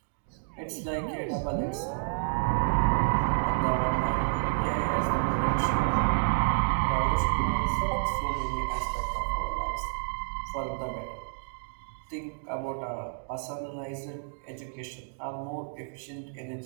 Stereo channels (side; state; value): left; silent; digital silence